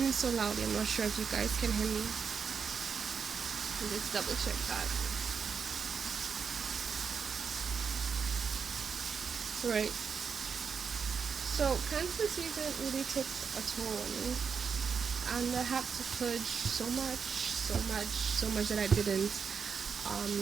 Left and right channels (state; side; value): quieter; left; 6.2 dB